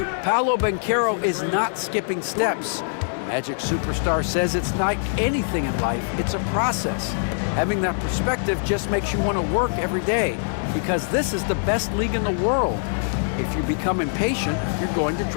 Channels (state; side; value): silent; right; 63 dB below the other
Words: Paolo Banchero is not skipping steps. Magic Superstar says it's like anything in life, it's a process. Having that perspective just makes you want to work every day because this is the best league in the world. If you become impatient, you're going to